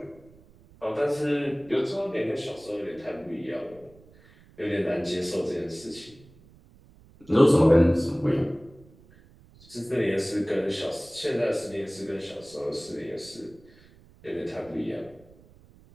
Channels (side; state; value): right; noise; rumble, 26 dB below the sound